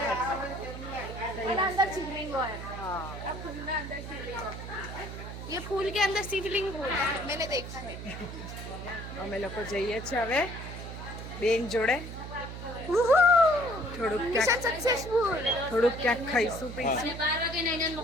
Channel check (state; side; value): noise; right; hum, 9 dB below the sound